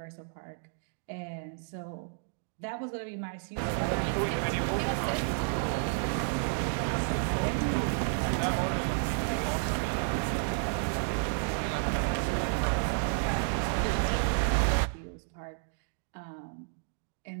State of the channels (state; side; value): silent; left; digital silence